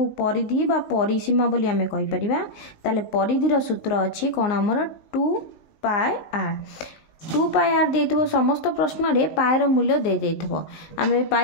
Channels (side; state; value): right; late; 19 ms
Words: परिधि बा परिसीमा बोली आमे कहि परिबा। ताले परिधिर सूत्र अच्छी कौन आमर 2πr 2πr देइथबो समस्त प्रश्न रे पायर मूल्य दे देइथबो। आमे